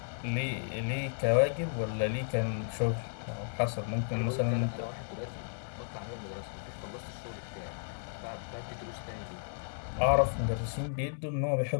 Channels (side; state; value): right; silent; digital silence